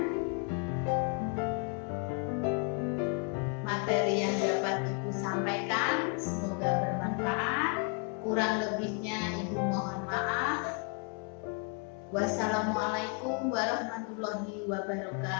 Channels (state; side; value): quieter; right; 36.1 dB